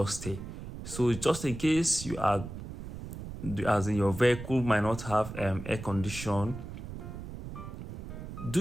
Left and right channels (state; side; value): noise; right; rumble, 10 dB below the sound